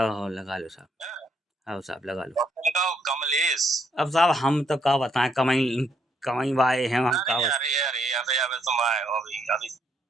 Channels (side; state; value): both; normal; correlation 0.73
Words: लगा लो साहब, हाँ साहब लगा लो। उनका कमलेश। अब साहब हम तो क्या बताएं, कमाई वाए हैं हम का। अरे तुम आए हो अभी